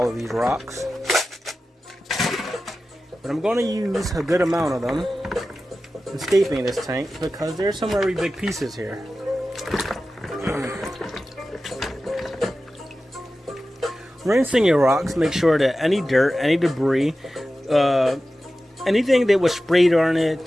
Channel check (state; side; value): normal; both; correlation 0.94